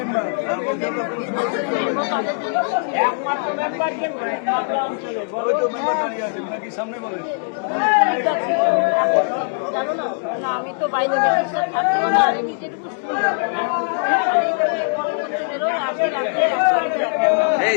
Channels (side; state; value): right; silent; 65 dB below the other